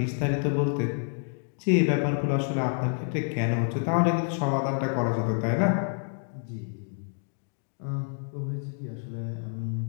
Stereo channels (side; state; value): right; silent; 59 dB below the other